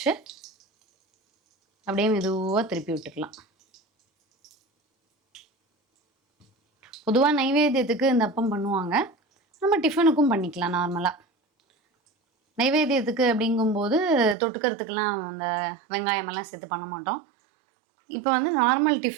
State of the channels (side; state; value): left; drops out; at 14.4 s